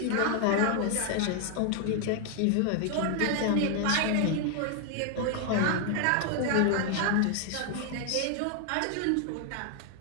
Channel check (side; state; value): both; different; correlation 0.00